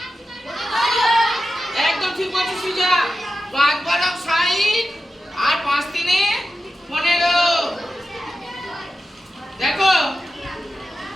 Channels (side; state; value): both; normal; correlation 0.91